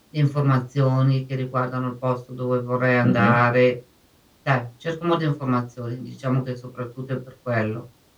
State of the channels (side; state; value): both; identical; correlation 1.00